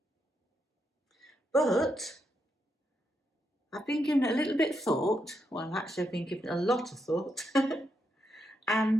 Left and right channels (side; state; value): both; normal; correlation 0.81